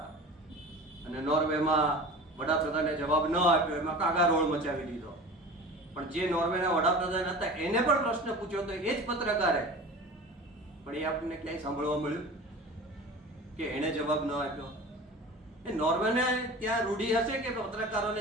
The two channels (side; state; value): both; normal; correlation 0.36